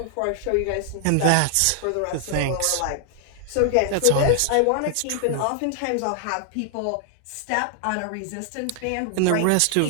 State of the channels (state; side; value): different; both; correlation 0.00